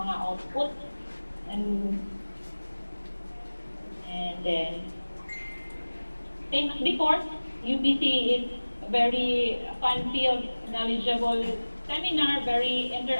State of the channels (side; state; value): both; inverted; correlation -1.00